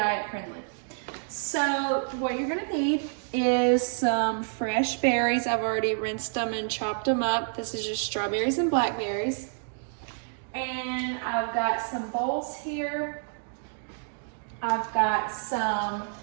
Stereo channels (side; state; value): left; silent; digital silence